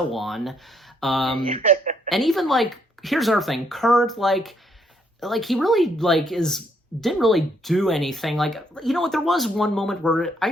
on. And even like, here's another thing, Kurt like he really like didn't really do anything. Like, you know what, there was one moment where I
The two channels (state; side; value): normal; both; correlation 0.71